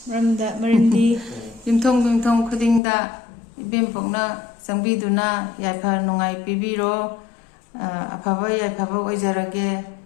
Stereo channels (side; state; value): right; drops out; at 2.8 s